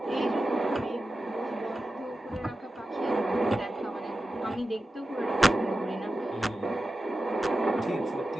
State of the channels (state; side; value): normal; both; correlation 0.92